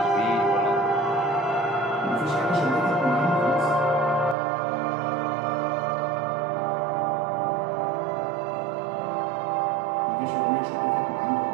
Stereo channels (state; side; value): drops out; left; at 4.4 s